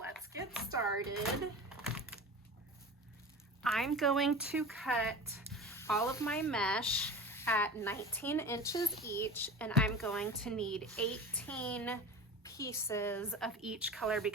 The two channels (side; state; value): both; normal; correlation 0.33